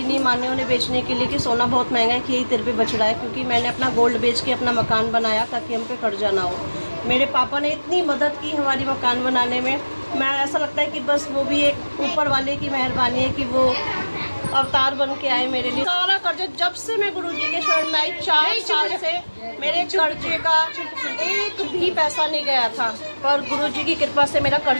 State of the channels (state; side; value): inverted; both; correlation -1.00